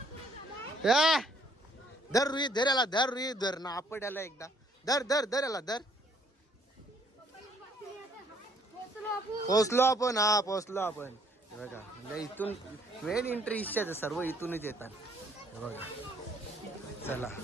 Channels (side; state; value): both; normal; correlation 0.64